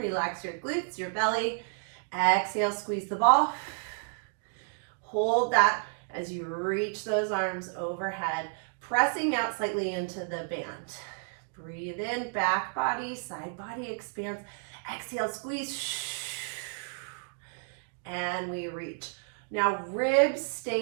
your glutes, your belly. Exhale, squeeze the ball. Hold that as you reach those arms overhead, pressing out slightly into the band. Breathe in, back body, side body expands. Exhale, squeeze. And we reach. Now ribs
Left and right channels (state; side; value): silent; left; 57 dB below the other